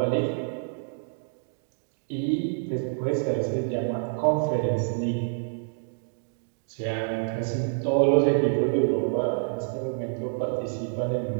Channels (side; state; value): left; silent; digital silence